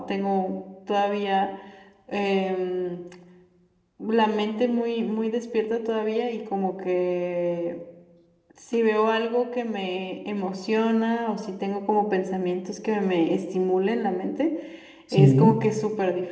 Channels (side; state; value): both; identical; correlation 1.00